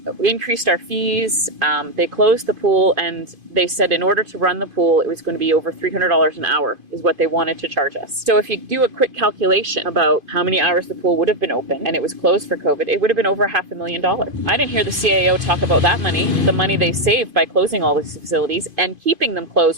increased our fees, they closed the pool, and they said in order to run the pool, it was going to be over $300 an hour is what they wanted to charge us. So if you do a quick calculation about how many hours the pool would have been open and it was closed for COVID, it would have been over $500,000. I didn't hear the CAO talk about that money, the money they saved by closing all these facilities and keeping them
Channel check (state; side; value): late; left; 2.5 ms